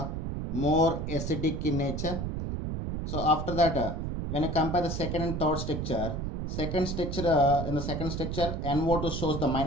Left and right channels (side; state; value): right; noise; rumble, 3 dB below the sound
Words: more acidic in nature. So after that, when you compare the second and third structure, in the second structure NO2 shows the